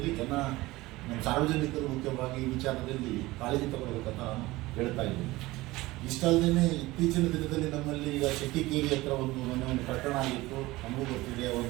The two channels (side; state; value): left; quieter; 19.5 dB